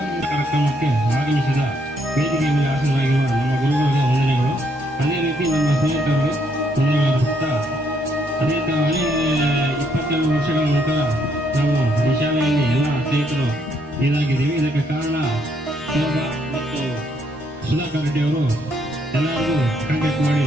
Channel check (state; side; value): normal; both; correlation 0.72